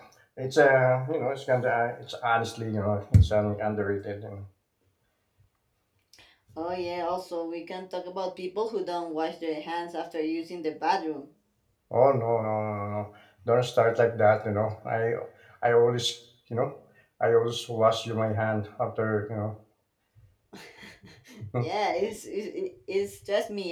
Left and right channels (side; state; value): both; identical; correlation 1.00